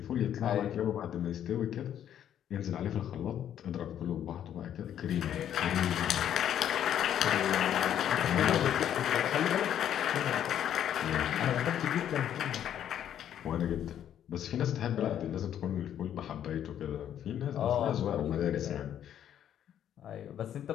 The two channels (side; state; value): right; quieter; 10.2 dB